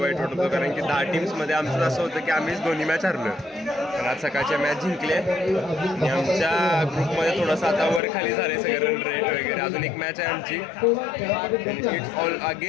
वाईट वाटत होतं कारण की 10 टीम्समध्ये आमचं असं होतं की आम्हीच दोन्ही मॅच हरलो. पण आज सकाळच्या मॅच जिंकले आणि आमच्या ग्रुपमध्ये थोडंसं आता वर खाली झाले सगळे रन रेट वगैरे. अजून एक मॅच आहे आमची. It's all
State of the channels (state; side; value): drops out; right; at 8.0 s